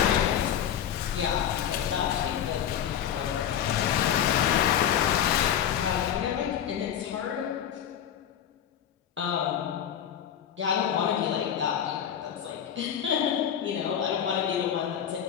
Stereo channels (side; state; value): right; quieter; 9.5 dB